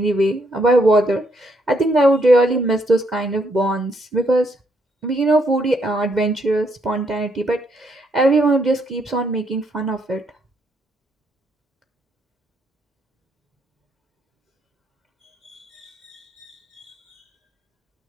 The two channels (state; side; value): normal; both; correlation 0.74